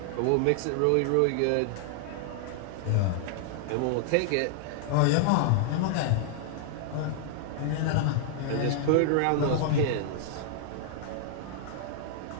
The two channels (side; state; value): both; different; correlation -0.01